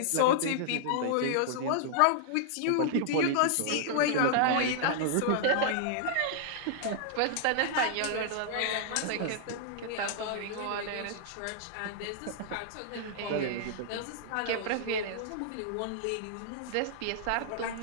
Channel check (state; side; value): different; both; correlation -0.01